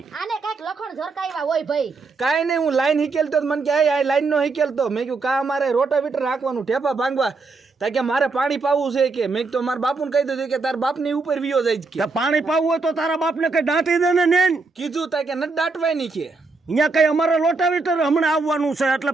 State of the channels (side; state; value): left; quieter; 4.0 dB